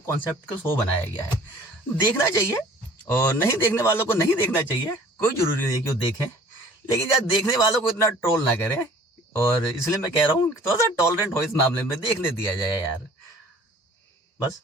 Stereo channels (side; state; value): both; normal; correlation 0.51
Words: का शो बनाया गया है। देखना चाहिए और नहीं देखने वालों को नहीं देखना चाहिए, कोई जरूरी नहीं कि वो देखें, लेकिन यार देखने वालों को इतना ट्रोल ना करें। और इसलिए मैं कह रहा हूँ थोड़ा सा टॉलरेंट हो इस मामले में, देखने दिया जाए यार, बस।